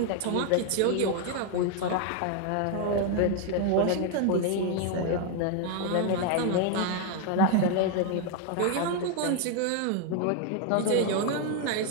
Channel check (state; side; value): different; both; correlation 0.01